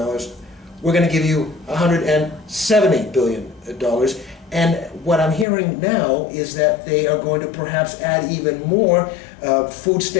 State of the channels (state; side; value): drops out; right; at 5.5 s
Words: going to give you $170 billion. And what I'm hearing now is that they are going to perhaps add even more food